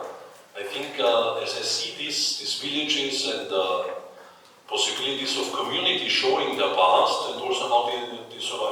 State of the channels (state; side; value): identical; both; correlation 1.00